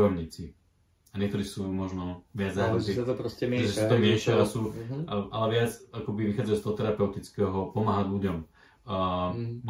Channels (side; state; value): both; identical; correlation 1.00